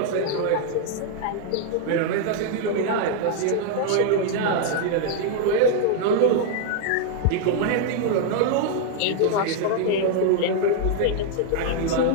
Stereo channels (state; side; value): different; both; correlation -0.01